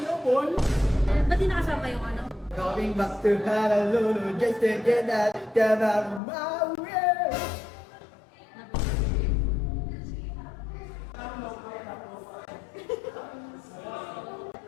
Paul. Ba't di nakasama yung ano? Coming back to Honolulu just to get out of my way.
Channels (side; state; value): right; drops out; at 6.2 s